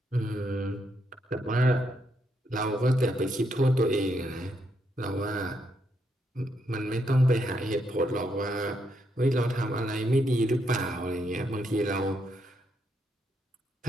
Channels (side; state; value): both; normal; correlation 0.78